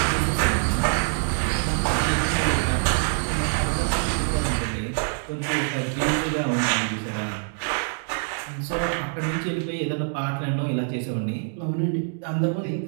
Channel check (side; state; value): left; silent; 62 dB below the other